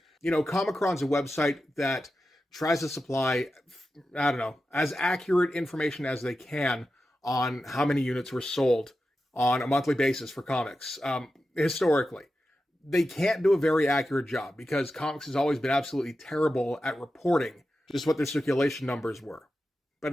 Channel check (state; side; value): normal; both; correlation 0.91